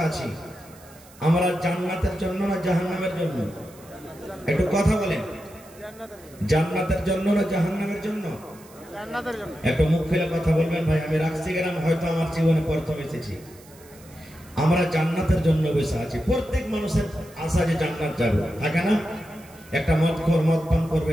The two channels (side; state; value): right; noise; hiss, 24 dB below the sound